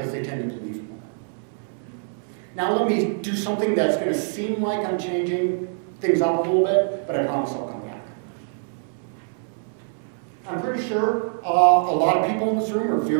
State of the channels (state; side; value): silent; left; 60 dB below the other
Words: they tend to believe more. Now let me do something that's going to seem like I'm changing things up a little bit, but I promise I'll come back. I'm pretty sure a lot of people in this room are